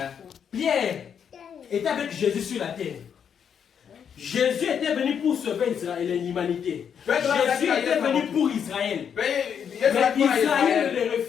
Pierre était avec Jésus sur la terre. Jésus était venu pour sauver Israël et l'humanité. Jésus était venu pour Israël. Mais Israël le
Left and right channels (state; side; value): quieter; right; 7.8 dB